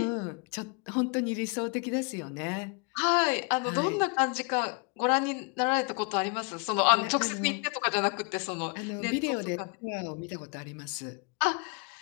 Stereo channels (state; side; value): quieter; right; 33.6 dB